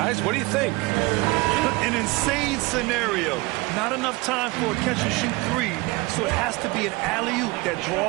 what do you think? An insane scenario. Not enough time for a catch-and-shoot 3, so it has to be an alley-oop that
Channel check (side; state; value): left; quieter; 23.4 dB